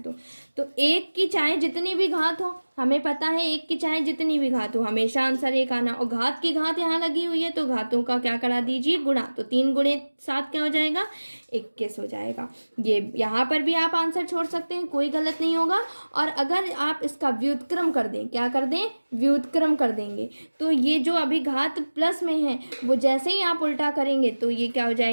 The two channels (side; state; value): both; inverted; correlation -1.00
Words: दो। तो 1 की चाहे जितनी भी घात हो, हमें पता है 1 की चाहे जितनी भी घात हो हमेशा आंसर 1 आना। और घात की घात यहाँ लगी हुई है तो घातों का क्या करा दीजिए, गुणा। तो 3 गुणे 7 क्या हो जाएगा, 21 हो जाएगा। ये यहाँ पर भी आप आंसर छोड़ सकते हैं, कोई गलत नहीं होगा। और अगर आप इसका व्युत्क्रम कर दें, क्या कर दें, व्युत्क्रम कर देंगे, तो ये जो अभी घात प्लस में है वो जैसे ही आप उल्टा करेंगे तो ये क्या हो